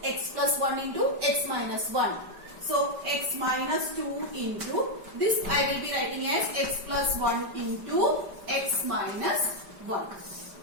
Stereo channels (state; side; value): late; left; 5.1 ms